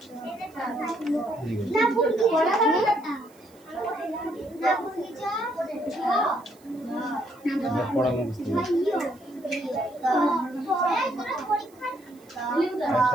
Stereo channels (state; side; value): noise; right; hiss, 29 dB below the sound